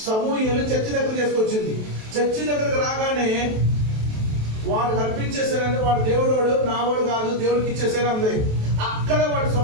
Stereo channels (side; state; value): left; late; 27 ms